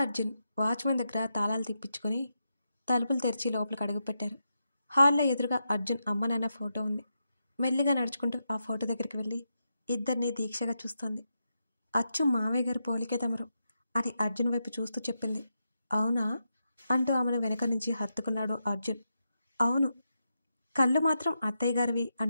అర్జున్ వాచ్మెన్ దగ్గర తాళాలు తిప్పించుకొని తలుపులు తెరిచి లోపలికి అడుగుపెట్టారు. హాల్లో ఎదురుగా అర్జున్ అమ్మ నాన్న ఫోటో ఉంది. మెల్లిగా నడుచుకుంటూ ఆ ఫోటో దగ్గరికి వెళ్ళి ఇద్దరిని దీక్షగా చూస్తోంది. అచ్చు మావయ్య గారు పోలికే తమరు అని అర్జున్ వైపు చూస్తూ చెప్పింది. అవునా అంటూ ఆమెను వెనక నుంచి హత్తుకున్నాడు అర్జున్. అవును, కళ్ళు మాత్రం అత్తయ్య గారివి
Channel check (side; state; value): both; inverted; correlation -0.86